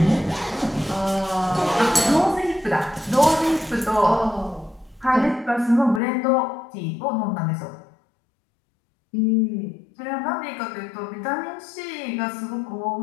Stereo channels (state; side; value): drops out; right; at 6.0 s